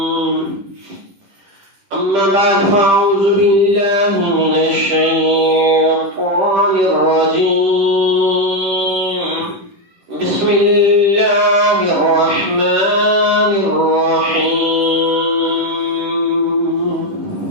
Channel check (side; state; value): left; late; 10 ms